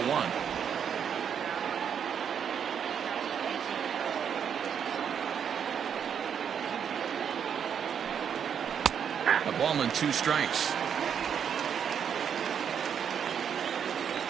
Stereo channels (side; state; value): left; quieter; 7.9 dB